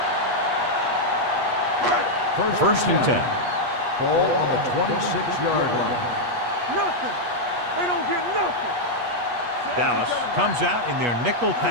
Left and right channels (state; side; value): late; left; 8.3 ms